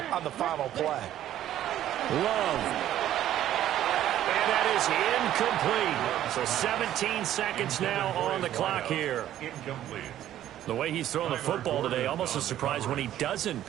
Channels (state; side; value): quieter; left; 12.2 dB